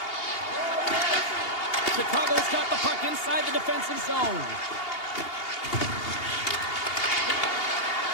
Chicago's got the puck inside the defensive zone.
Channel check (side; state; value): right; late; 2.8 ms